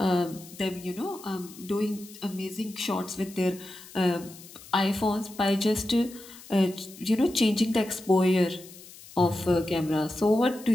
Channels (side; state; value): left; noise; hiss, 19 dB below the sound